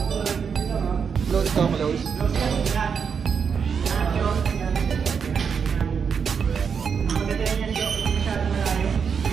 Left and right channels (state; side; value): quieter; left; 6.5 dB